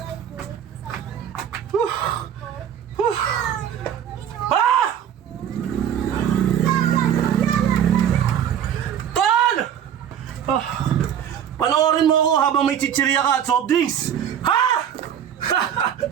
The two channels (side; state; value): left; quieter; 9.3 dB